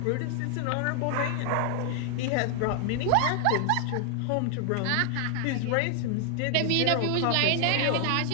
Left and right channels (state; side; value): different; both; correlation 0.00